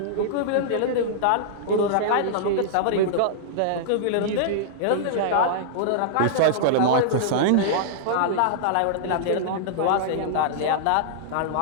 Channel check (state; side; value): different; both; correlation -0.02